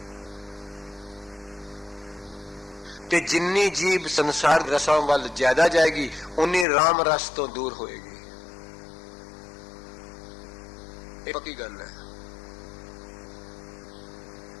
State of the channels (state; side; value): drops out; right; at 6.7 s